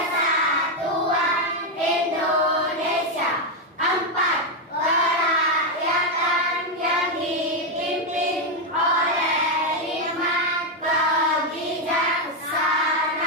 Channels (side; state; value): both; normal; correlation 0.04